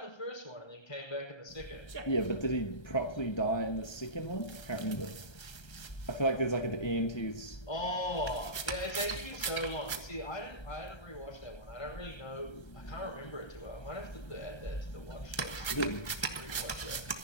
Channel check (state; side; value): late; right; 1.3 ms